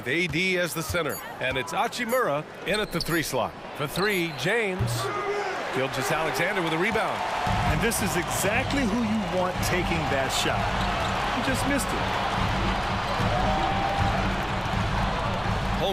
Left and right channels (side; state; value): both; identical; correlation 1.00